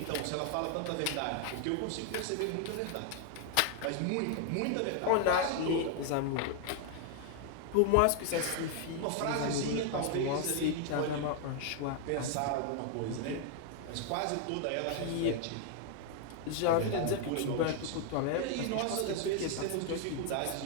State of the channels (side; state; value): both; different; correlation 0.00